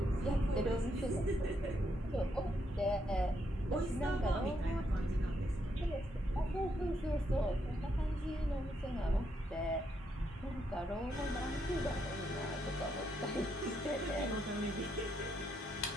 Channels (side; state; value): both; normal; correlation 0.78